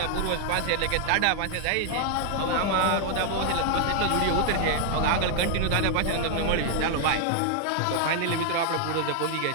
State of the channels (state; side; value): different; both; correlation 0.00